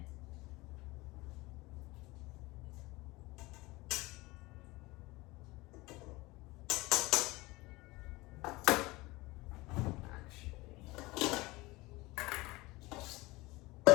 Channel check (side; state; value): right; quieter; 21.6 dB